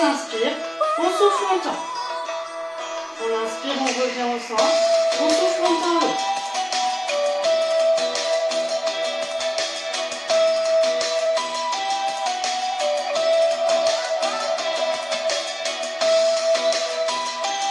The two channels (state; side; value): identical; both; correlation 1.00